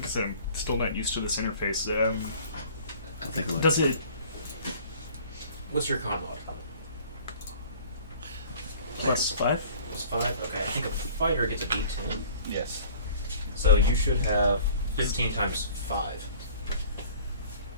I said, I'm still not used to this interface. I'll take a look. Does it? What's your con mod? Plus 5? Plus 5? Okay, I think a fighter gets a D10. Yes. So you should have 15 times 5.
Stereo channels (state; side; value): inverted; both; correlation -0.49